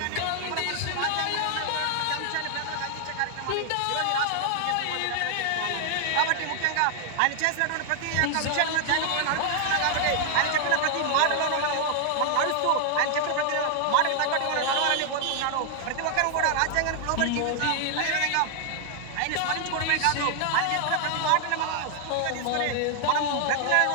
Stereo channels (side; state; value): both; different; correlation 0.00